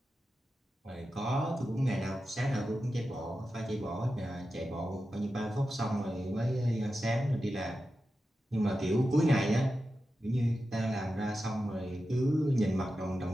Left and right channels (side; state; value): both; normal; correlation 0.91